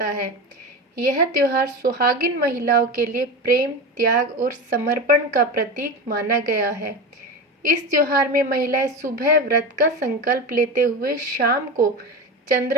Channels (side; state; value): both; normal; correlation 0.24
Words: है। यह त्योहार सुहागिन महिलाओं के लिए प्रेम, त्याग और समर्पण का प्रतीक माना गया है। इस त्योहार में महिलाएं सुबह व्रत का संकल्प लेते हुए शाम को